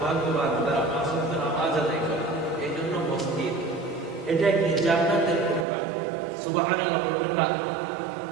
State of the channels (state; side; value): drops out; left; at 5.7 s